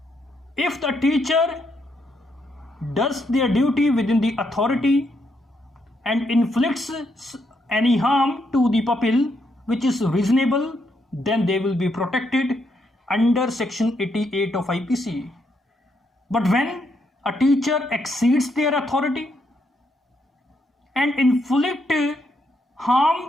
if the teacher does their duty within the authority and inflicts any harm to the pupil which is reasonable, then they will be protected under section 88 of IPC. But when a teacher exceeds their authority and inflict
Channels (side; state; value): both; normal; correlation 0.77